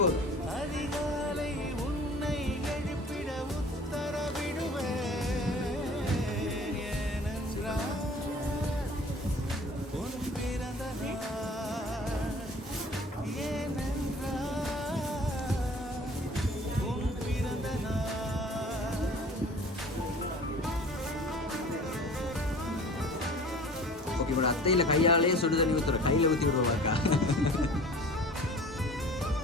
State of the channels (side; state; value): both; normal; correlation 0.45